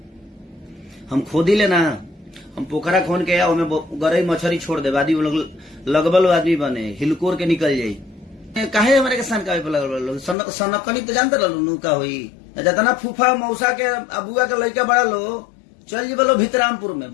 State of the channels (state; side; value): drops out; right; at 10.4 s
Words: हम खोदी लेना हम पोखरा खोन के ओमे गरई मछरी छोड़ दे आदमी लगबल आदमी बने हिलकोर के निकल जाई काहे हमारे के सनकावे पे लगल सनकनी तो जानते रहलू नु का होई जतना फूफा मौसा के अबुआ के लड़का बड़ा लो चल जी बोलो भितरामपुर में